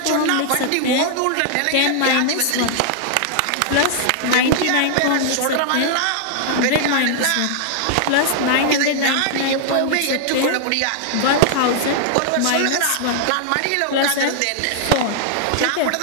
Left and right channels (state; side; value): different; both; correlation -0.01